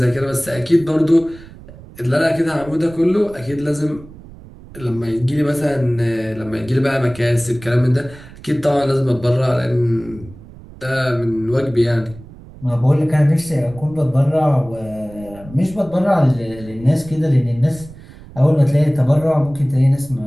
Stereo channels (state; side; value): noise; right; rumble, 19 dB below the sound